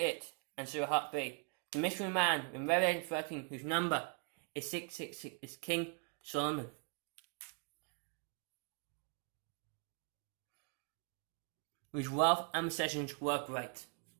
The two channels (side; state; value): left; quieter; 39.1 dB